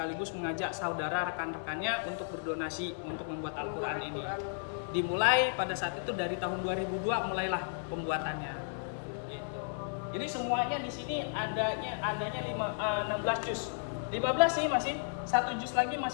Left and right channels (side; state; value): right; silent; digital silence